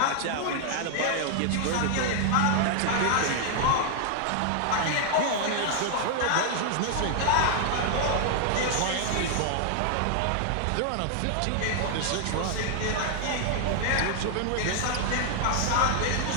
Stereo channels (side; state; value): both; different; correlation 0.00